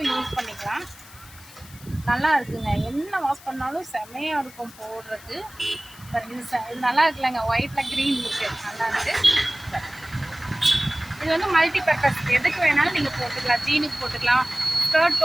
யூஸ் பண்ணிக்கலாம். நல்லா இருக்குங்க. என்ன வாஷ் பண்ணாலும் செம்மையாக இருக்கும் போடுறதுக்கு. இது நல்லா இருக்குல்லங்க, ஒயிட்டில் க்ரீன் லுக்கு நல்லா இருக்குது. இது வந்து மல்டி பர்பஸ், எதுக்கு வேணாலும் நீங்கள் போட்டுக்கலாம். ஜீனுக்கு போட்டுக்கலாம், ஸ்கர்ட்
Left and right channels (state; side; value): noise; left; hiss, 21 dB below the sound